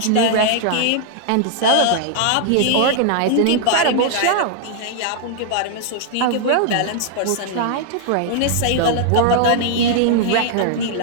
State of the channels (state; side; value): different; both; correlation -0.01